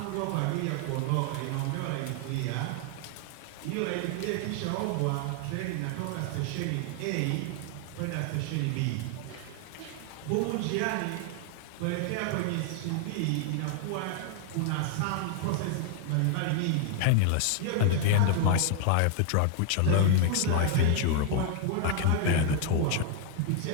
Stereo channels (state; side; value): different; both; correlation 0.00